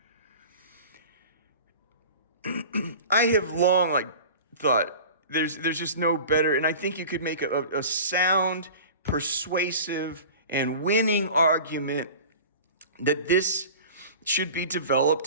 I have long thought there's just no better, and I think you could make a sound, persuasive, and winning argument that this should be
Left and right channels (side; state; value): both; inverted; correlation -0.38